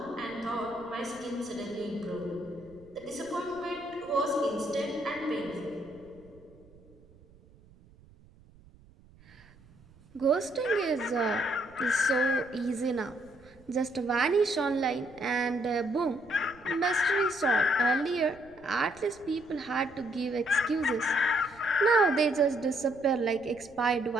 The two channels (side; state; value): right; noise; rumble, 26 dB below the sound